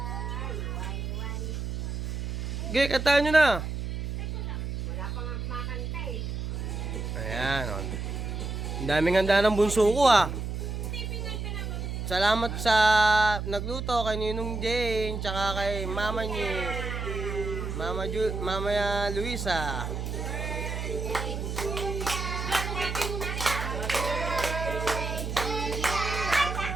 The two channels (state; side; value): noise; right; hum, 4 dB below the sound